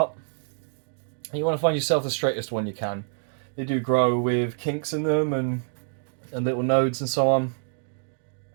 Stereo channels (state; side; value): silent; left; digital silence